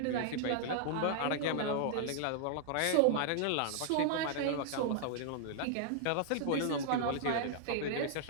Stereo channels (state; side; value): different; both; correlation -0.01